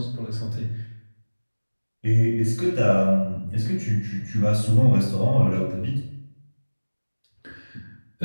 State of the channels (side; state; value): both; inverted; correlation -1.00